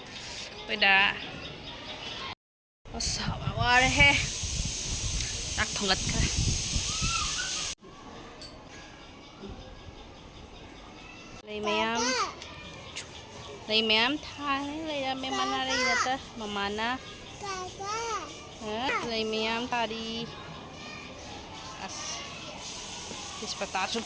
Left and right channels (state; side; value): identical; both; correlation 1.00